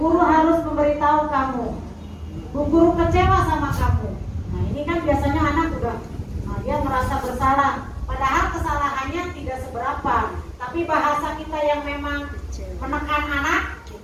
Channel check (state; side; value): identical; both; correlation 1.00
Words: harus memberitahu kamu, Bu Guru kecewa sama kamu. Nah, ini kan biasanya anak dia merasa bersalah, padahal kesalahannya tidak seberapa, tapi bahasa kita yang memang menekan anak